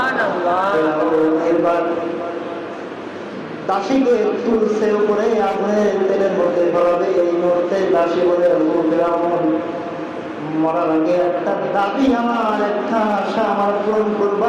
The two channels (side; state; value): both; identical; correlation 1.00